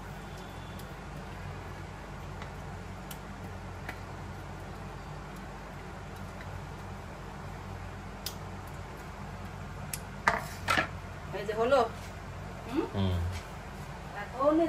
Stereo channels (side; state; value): both; identical; correlation 1.00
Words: এই যে হলো। এখন